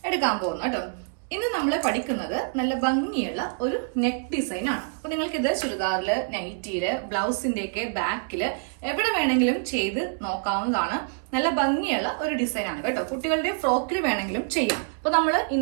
എടുക്കാൻ പോകുന്നത് കേട്ടോ. ഇന്ന് നമ്മൾ പഠിക്കുന്നത് നല്ല ഭംഗിയുള്ള ഒരു നെക്ക് ഡിസൈൻ ആണ്. അപ്പൊ നിങ്ങൾക്ക് ഇത് ചുരിദാറില്, നൈറ്റിയില്, ബ്ലൗസിന്റെ ഒക്കെ ബാക്കില് എവിടെ വേണമെങ്കിലും ചെയ്ത് നോക്കാവുന്നതാണ്. നല്ല ഭംഗിയുള്ള ഒരു ഡിസൈൻ ആണ് കേട്ടോ. കുട്ടികളുടെ ഫ്രോക്കിൽ വേണമെങ്കിലും ചെയ്യാം. അപ്പൊ നമ്മൾ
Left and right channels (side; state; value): left; silent; digital silence